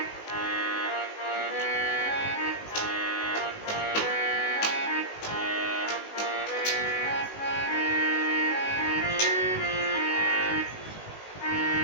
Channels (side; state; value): right; late; 19 ms